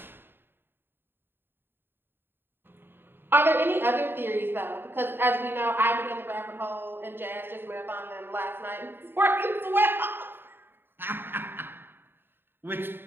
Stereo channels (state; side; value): late; left; 0.10 ms